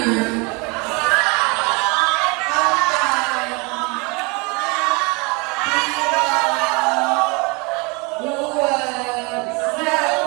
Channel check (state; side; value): quieter; left; 28.8 dB